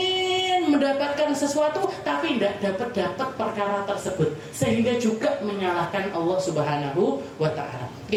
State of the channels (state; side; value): identical; both; correlation 1.00